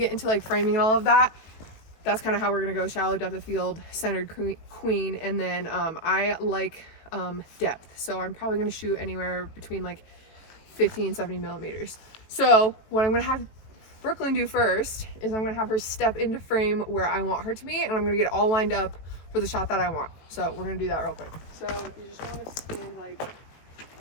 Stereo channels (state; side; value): late; right; 18 ms